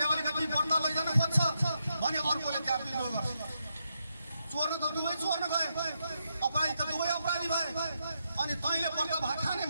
अलिकति बढ्न लैजान खोज्छ भने अर्कोले त्यहाँ विद्रोह गर्छ। चोर्न त दुवै चोर्न गए, अपराधी त दुवै अपराधी भए। अनि तैँले पर्दा भात खाने,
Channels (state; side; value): inverted; both; correlation -0.82